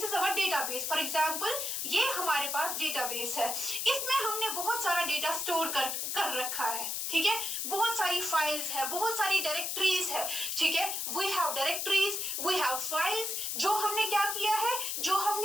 our database. For example ये हमारे पास डेटाबेस है, इसमें हमने बहुत सारा डेटा स्टोर कर रखा है, ठीक है, बहुत सारी फाइल्स है, बहुत सारी डायरेक्टरीज है, ठीक है, we have directories, we have files, जो हमने क्या किया है, जो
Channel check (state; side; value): noise; left; hiss, 1 dB below the sound